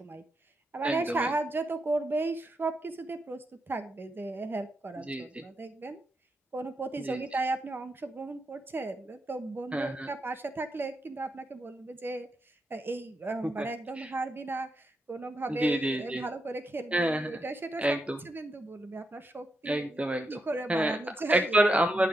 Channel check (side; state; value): both; normal; correlation 0.83